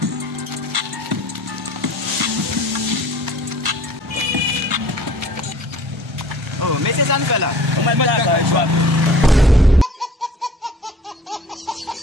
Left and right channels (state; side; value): normal; both; correlation 0.48